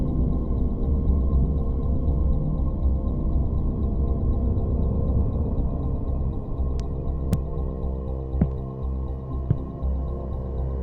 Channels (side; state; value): both; identical; correlation 1.00